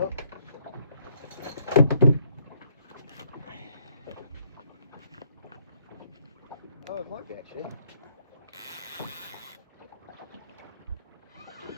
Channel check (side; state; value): both; inverted; correlation -0.69